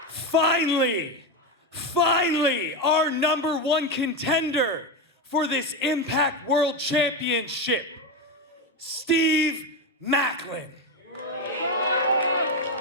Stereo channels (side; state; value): both; normal; correlation 0.11